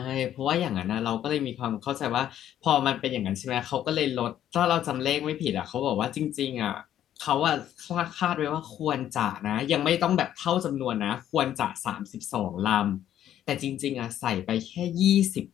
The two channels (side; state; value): right; quieter; 11.2 dB